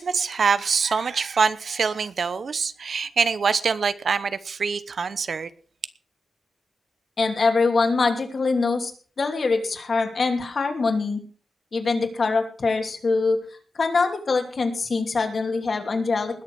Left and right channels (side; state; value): both; normal; correlation 0.88